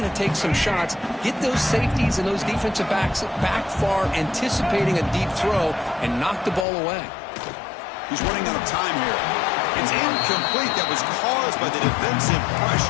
to take some shots. Get those safeties and those defensive backs back far, anticipating a deep throw, and knock the ball away. He's running out of time here. It's incomplete. That was caused by the defensive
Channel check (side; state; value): right; drops out; at 6.7 s